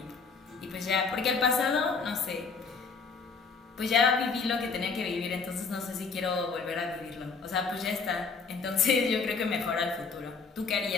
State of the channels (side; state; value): right; quieter; 4.9 dB